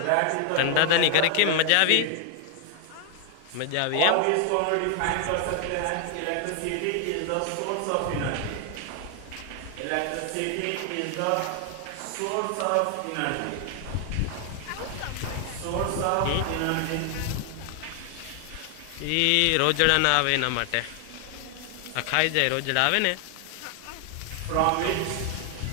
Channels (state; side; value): different; both; correlation 0.00